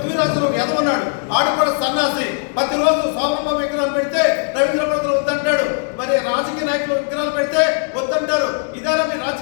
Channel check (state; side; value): silent; right; 57 dB below the other